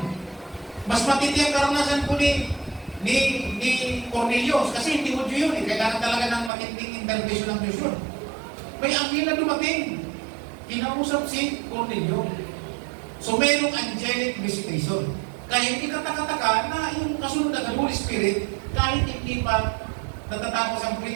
Mas matindi ang karanasan po ni Cornelio. Kasi hindi mo yun. Kailangan talaga ng matinding intervention ng Diyos yun. May anghel na dumating. Kinausap si Cornelio. So, mayroong angelic visitation. Kaya hindi kataka-taka na yung kasunod ng Holy Spirit, kahit hindi pa natatapos ang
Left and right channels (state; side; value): drops out; left; at 6.5 s